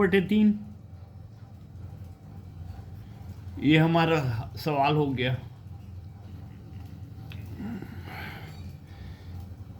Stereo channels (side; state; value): both; identical; correlation 1.00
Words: ये हमारा सवाल हो गया।